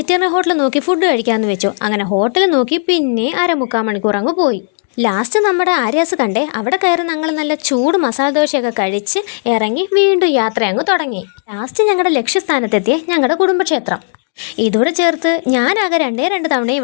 ഹോട്ടൽ നോക്കി ഫുഡ് കഴിക്കാമെന്ന് വെച്ചു. അങ്ങനെ ഹോട്ടൽ നോക്കി പിന്നെ 1/4 മണിക്കൂർ അങ്ങ് പോയി. ലാസ്റ്റ് നമ്മുടെ ആര്യാസ് കണ്ടേ. അവിടെ കയറി ഞങ്ങൾ നല്ല ചൂട് മസാല ദോശയൊക്കെ കഴിച്ച് ഇറങ്ങി വീണ്ടും യാത്ര അങ്ങ് തുടങ്ങി. ലാസ്റ്റ് ഞങ്ങളുടെ ലക്ഷ്യസ്ഥാനത്തെത്തിയ ഞങ്ങളുടെ കുടുംബക്ഷേത്രം. ഇതോടെ ചേർത്ത് ഞാനാകെ 2 തവണ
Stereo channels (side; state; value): right; silent; digital silence